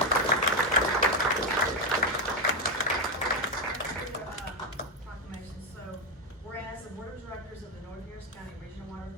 Proclamation. So, whereas the Board of Directors of the North Harris County Regional Water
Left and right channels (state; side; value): normal; both; correlation 0.06